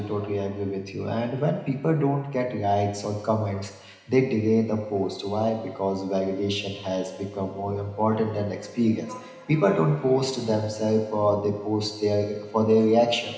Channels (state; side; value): identical; both; correlation 1.00